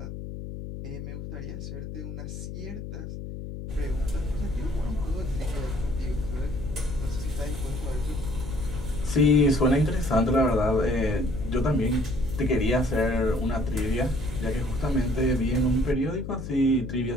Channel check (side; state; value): left; noise; hum, 8 dB below the sound